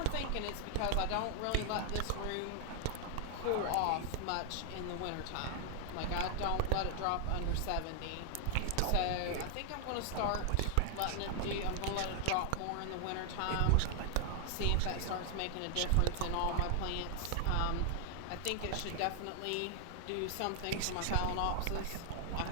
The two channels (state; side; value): different; both; correlation 0.00